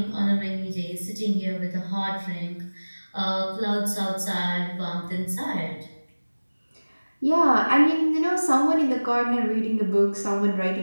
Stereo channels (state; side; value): inverted; both; correlation -1.00